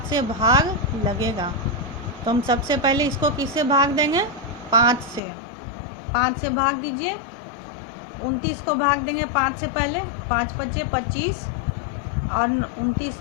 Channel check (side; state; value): right; drops out; at 5.2 s